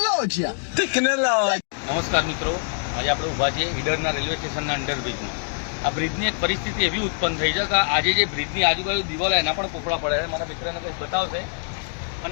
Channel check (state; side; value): silent; right; digital silence